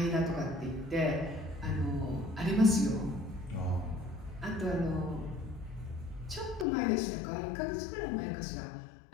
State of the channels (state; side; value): drops out; right; at 6.7 s